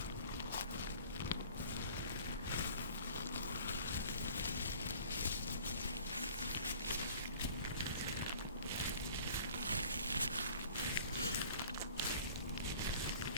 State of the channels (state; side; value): inverted; both; correlation -0.48